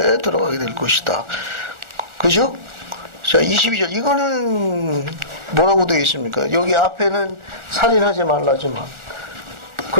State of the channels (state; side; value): late; left; 1.4 ms